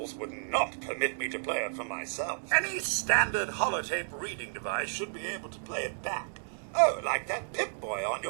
would not permit me to play it for myself. Any standard holotape reading device should be able to play it back. Oh, like that Pip-Boy on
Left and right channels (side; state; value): left; silent; digital silence